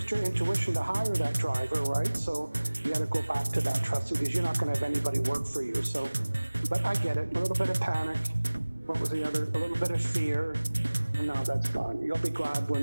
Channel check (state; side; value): inverted; both; correlation -1.00